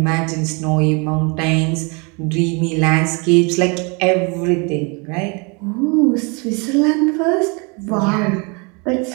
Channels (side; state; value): left; quieter; 31.3 dB